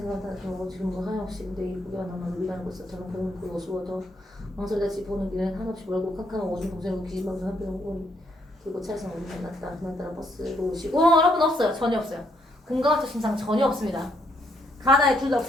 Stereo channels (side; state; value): both; normal; correlation 0.73